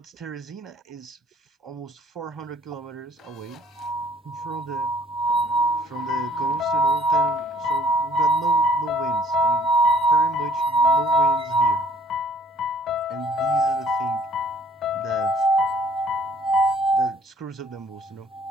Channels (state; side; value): normal; both; correlation 0.58